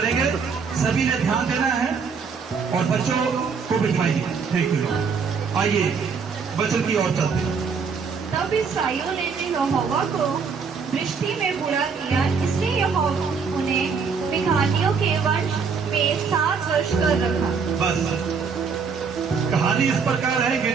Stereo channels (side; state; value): left; quieter; 5.7 dB